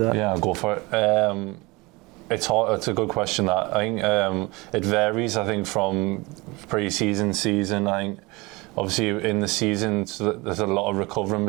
Yeah, I'll go for it. It's hard. It's a good question. That I think it varies. I think from pre-season, season. I think obviously in the season there's a lot of recovering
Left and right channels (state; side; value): quieter; left; 24.1 dB